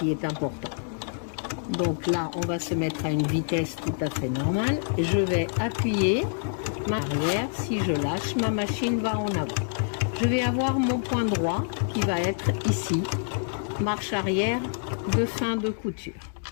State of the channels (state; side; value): silent; right; digital silence